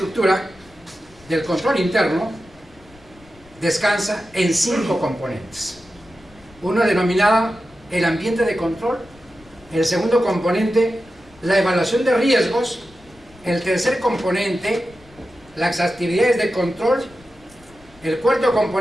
del control interno descansa en 5 componentes. Uno denominado el ambiente de control, el segundo componente, la evaluación de riesgos, el tercer componente, las actividades de control, el cuarto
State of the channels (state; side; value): noise; left; rumble, 26 dB below the sound